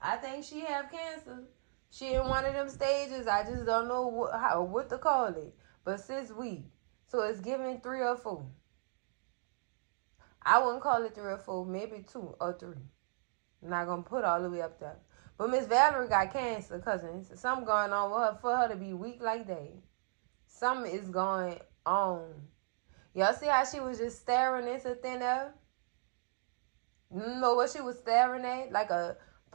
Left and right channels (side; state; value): left; silent; digital silence